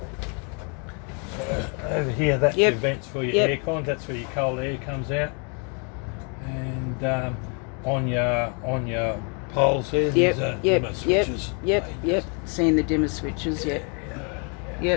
So over here, that's Yep. your vents for your Yep. aircon. That's where your cold air comes out. And on your poles there, Yep. these are Yep. dimmer Yep. switches. Yep. Yep. Seeing the dimmer switches. Yep.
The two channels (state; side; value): quieter; right; 37.2 dB